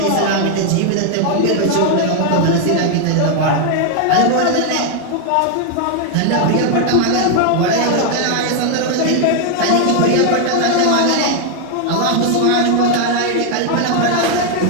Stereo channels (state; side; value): different; both; correlation 0.00